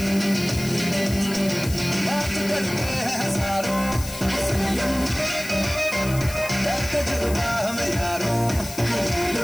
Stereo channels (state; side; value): noise; left; hiss, 12 dB below the sound